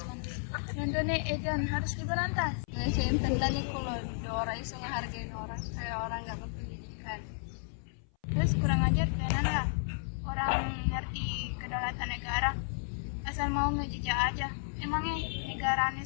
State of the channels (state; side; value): silent; right; 56 dB below the other